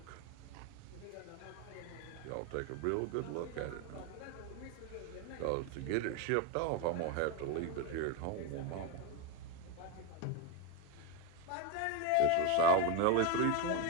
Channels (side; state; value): both; different; correlation 0.03